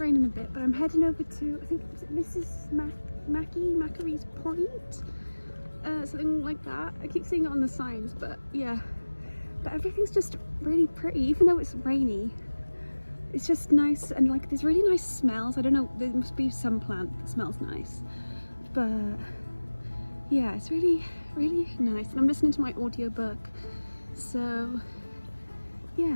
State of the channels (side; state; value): both; inverted; correlation -1.00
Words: a bit, but I'm heading over to, I think it's Mrs. Macary's Point, something like that. I keep seeing it on the signs, but yeah. But everything's just really pretty, even though it's rainy. It's just nice, and like there's really nice smells. I don't know, there must be some plant that smells nice, but yeah, it's really, really nice. And I'm listening to my audiobook, so